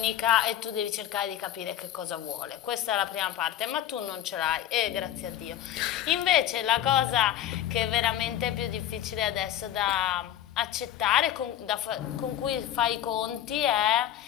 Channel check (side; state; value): right; quieter; 11.5 dB